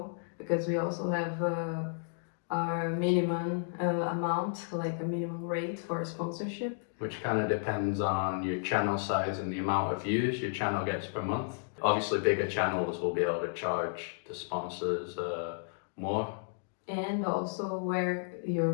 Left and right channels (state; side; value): silent; right; digital silence